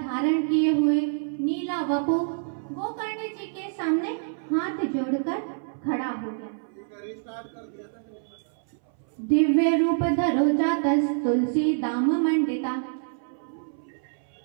किए हुए, नीला वपु गोकर्ण जी के सामने हाथ जोड़कर खड़ा हो गया। दिव्य रूप धरो जातस तुलसी दाम मंडिता।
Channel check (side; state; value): left; silent; 59 dB below the other